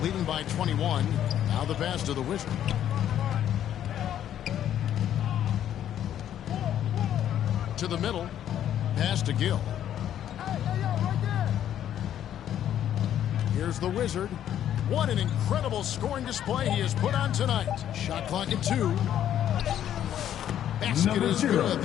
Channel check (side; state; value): right; quieter; 10.7 dB